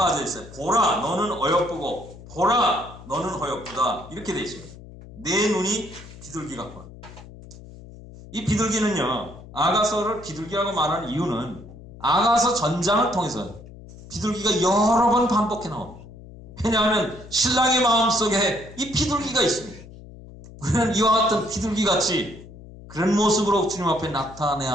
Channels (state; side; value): noise; left; hum, 17 dB below the sound